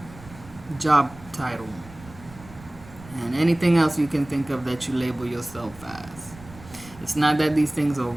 job title, and anything else you can think of that you label yourself as. It's not that these things are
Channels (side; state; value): right; noise; rumble, 19 dB below the sound